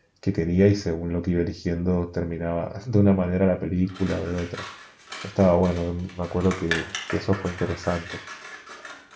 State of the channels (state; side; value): identical; both; correlation 1.00